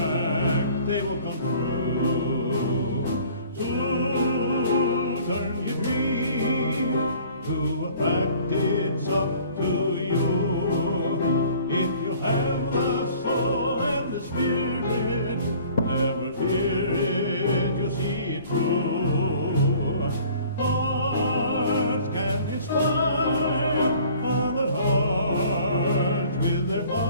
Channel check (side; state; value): both; inverted; correlation -0.52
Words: they will come true. To turn your dreams to a fact, it's up to you. If you have the soul and the spirit, never fear it, you'll see it through. Arts can inspire.